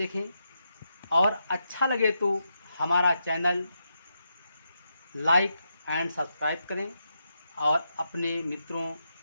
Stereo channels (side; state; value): both; inverted; correlation -0.84